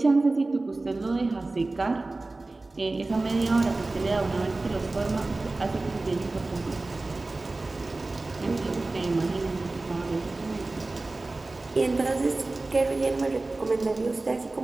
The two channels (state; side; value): quieter; left; 3.2 dB